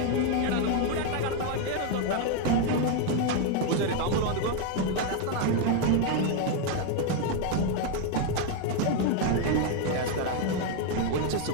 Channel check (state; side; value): different; both; correlation 0.01